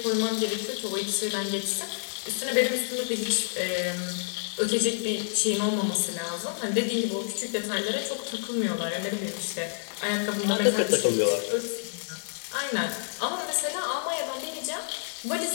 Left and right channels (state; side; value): silent; right; 59 dB below the other